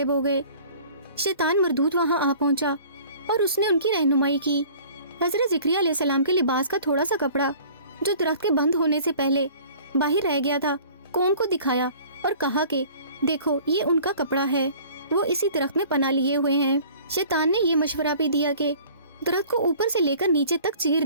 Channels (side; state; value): both; inverted; correlation -0.48